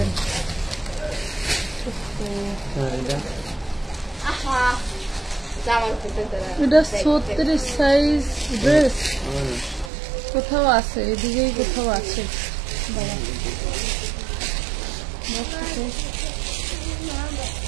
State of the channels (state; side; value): drops out; left; at 9.9 s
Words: এটা 36 সাইজ ড্রেস, কোথাও আছে, এদিকেই কোথাও আছে।